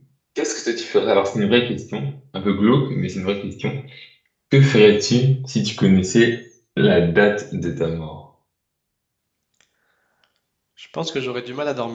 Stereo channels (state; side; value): identical; both; correlation 1.00